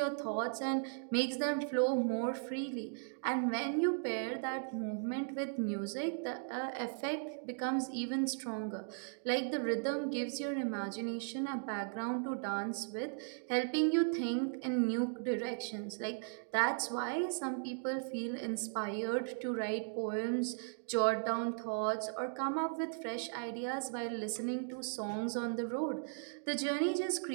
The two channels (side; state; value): left; silent; digital silence